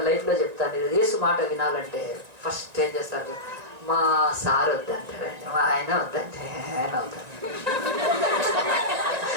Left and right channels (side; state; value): left; late; 1.9 ms